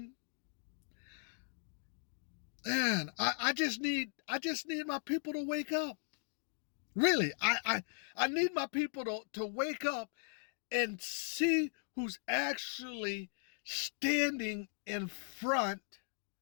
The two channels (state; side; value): silent; right; digital silence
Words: Man, I just need my people to wake up. Really, I need my people to wake up and see who's actually standing in front